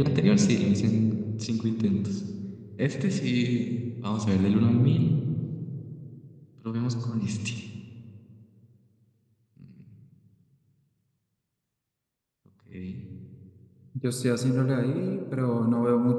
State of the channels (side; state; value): both; identical; correlation 1.00